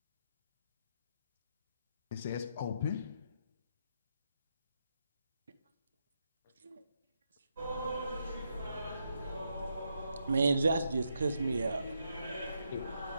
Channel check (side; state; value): both; inverted; correlation -0.81